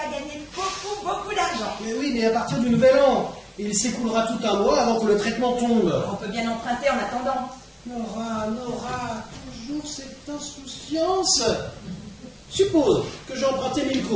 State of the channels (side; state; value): both; identical; correlation 1.00